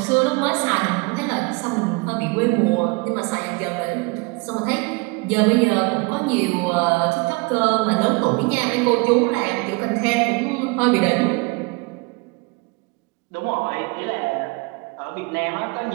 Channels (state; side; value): quieter; left; 27.9 dB